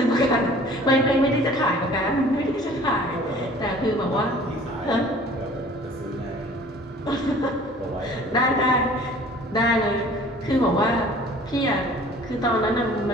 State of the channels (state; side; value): normal; both; correlation 0.49